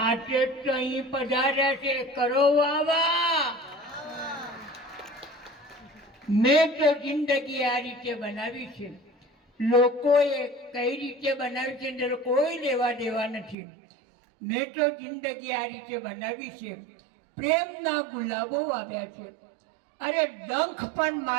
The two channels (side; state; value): left; drops out; at 13.6 s